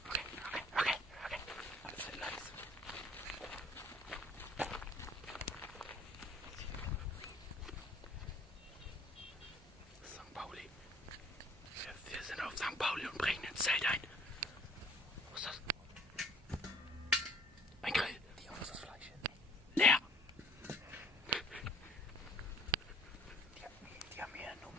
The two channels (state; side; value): normal; both; correlation 0.54